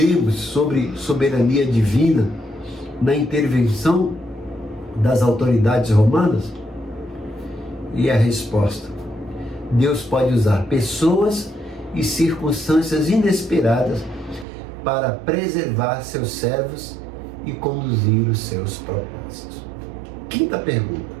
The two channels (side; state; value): left; drops out; at 14.5 s